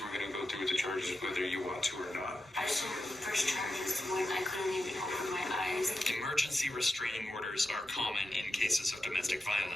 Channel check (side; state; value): both; normal; correlation 0.90